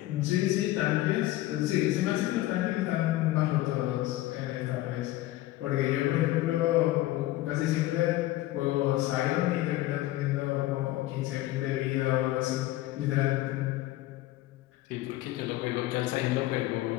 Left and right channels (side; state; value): right; quieter; 16.3 dB